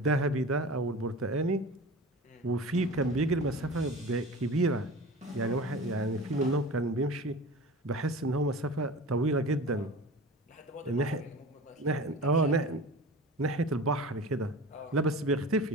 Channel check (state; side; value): normal; both; correlation 0.35